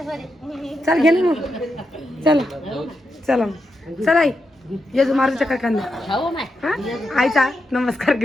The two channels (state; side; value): normal; both; correlation 0.85